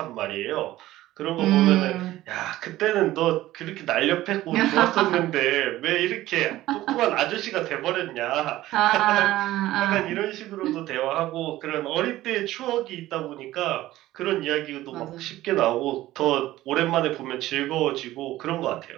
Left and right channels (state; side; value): quieter; left; 15.7 dB